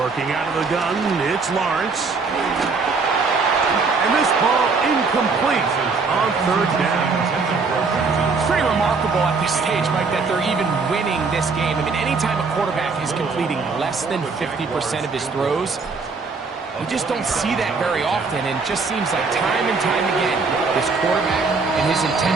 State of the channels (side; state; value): left; quieter; 4.5 dB